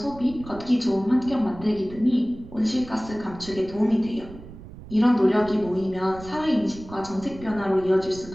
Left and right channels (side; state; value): right; noise; rumble, 16 dB below the sound